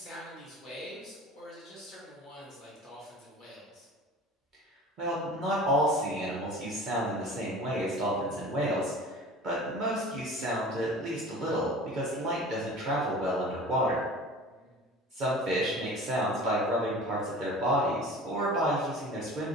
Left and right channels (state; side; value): normal; both; correlation 0.40